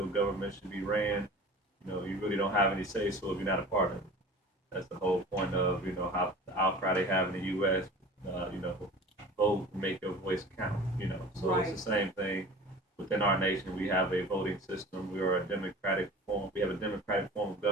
government should be ran, you really don't have any say so if you're not a part of it. That's the whole point of how the outcry they have in the U.S. Vote and make your voice count. So Right. It's the same thing within our nation. We have a voting system. We are a democratic form. We have a democratic form of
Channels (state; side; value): normal; both; correlation 0.40